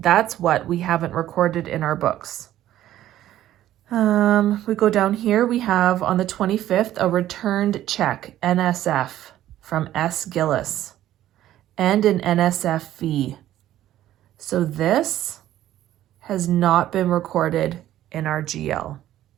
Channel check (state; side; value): quieter; left; 13.1 dB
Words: what we haven't recorded in our books. We go down here, we have on the 25th a returned check, NSF, from S. Gillis, and an NSF fee. So this has not been recorded in our GL.